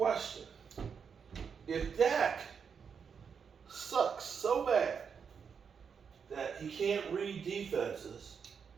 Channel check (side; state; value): left; quieter; 6.5 dB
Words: If Dak sucks so bad that he can't read defenses